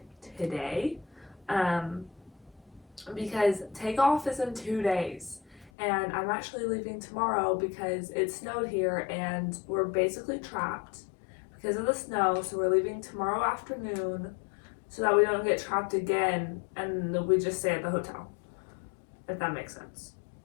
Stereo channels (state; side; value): drops out; right; at 5.7 s